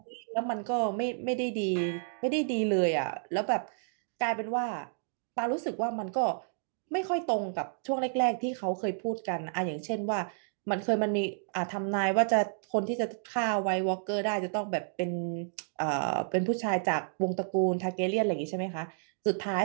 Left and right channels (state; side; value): silent; left; digital silence